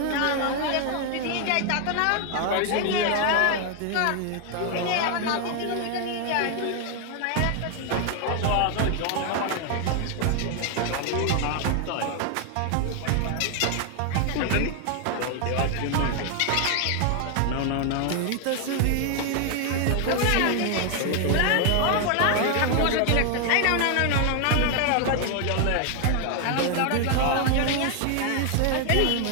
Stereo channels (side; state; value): both; different; correlation 0.00